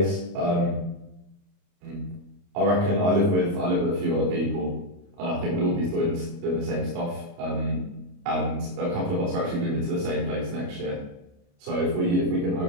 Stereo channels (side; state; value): left; late; 29 ms